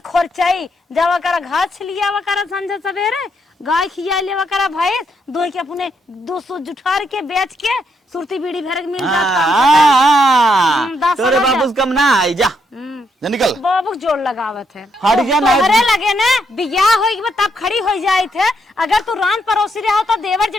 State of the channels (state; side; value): normal; both; correlation 0.76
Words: खोरचाई जावा करा घास लिया वा करा संझा सवेरे गाय खिया लेवा करा भैंस दो के अपने 200 जुठार के बेच के सुरती बीड़ी भर के मिल जाता तोरे बाबू कम ना आई जा निकल बाबू जोड़ लगावत है हट गया ना तोहरे लगे ना बियाह होई तब खड़ी हो जाए थे अगर तू रान परोसी रहा होता देवर